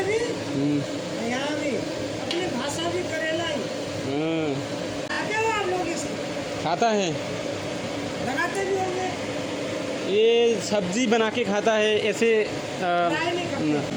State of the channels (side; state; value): both; identical; correlation 1.00